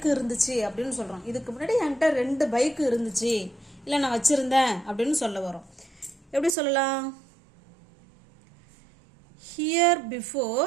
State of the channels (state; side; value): drops out; left; at 6.6 s